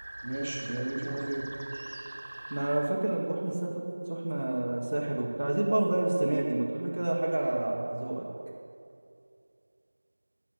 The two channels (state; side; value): inverted; both; correlation -1.00